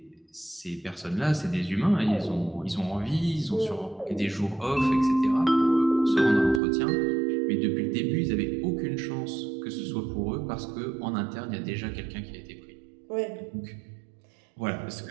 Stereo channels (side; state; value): left; drops out; at 6.6 s